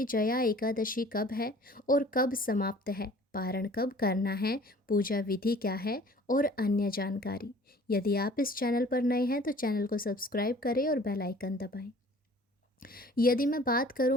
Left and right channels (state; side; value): normal; both; correlation 0.50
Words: जया एकादशी कब है और कब समाप्त है, पारण कब करना है, पूजा विधि क्या है और अन्य जानकारी। यदि आप इस चैनल पर नए हैं तो चैनल को सब्सक्राइब करें और बेल आइकन दबाएं। यदि मैं बात